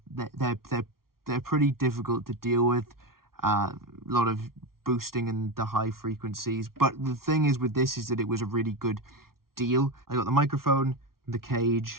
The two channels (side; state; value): left; late; 0.93 ms